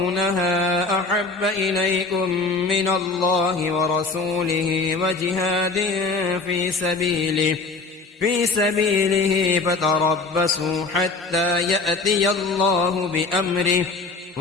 أحب إليكم من الله ورسوله وجهاد في سبيله فتربصوا حتى يأتي الله بأمره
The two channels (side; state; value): right; quieter; 3.8 dB